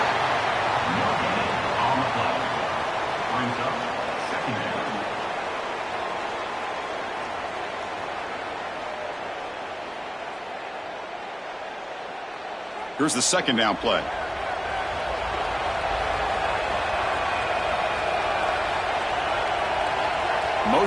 Here's the 2nd down play.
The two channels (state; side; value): identical; both; correlation 1.00